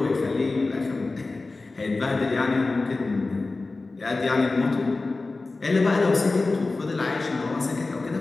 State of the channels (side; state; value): right; quieter; 3.5 dB